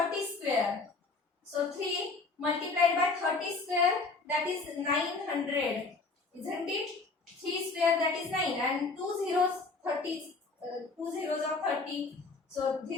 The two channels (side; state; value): right; quieter; 3.9 dB